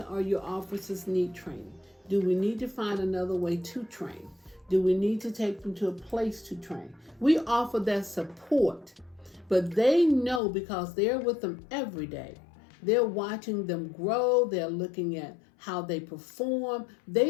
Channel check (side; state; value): right; drops out; at 10.4 s